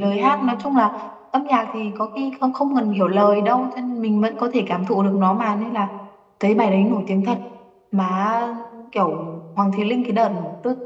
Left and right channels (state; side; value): identical; both; correlation 1.00